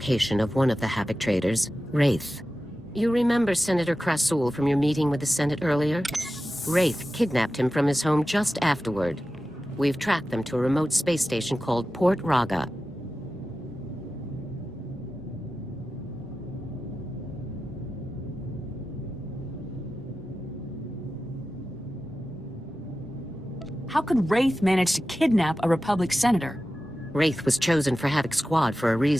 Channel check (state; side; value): normal; both; correlation 0.93